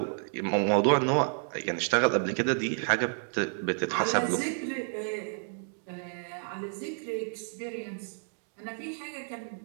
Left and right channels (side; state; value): left; silent; digital silence